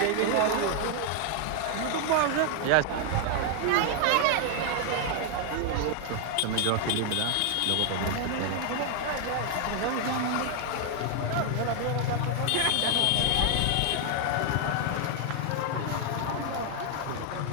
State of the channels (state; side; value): different; both; correlation 0.00